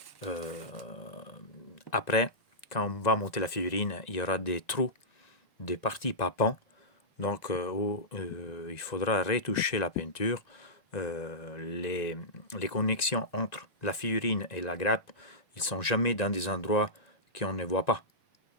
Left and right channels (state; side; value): late; right; 1.9 ms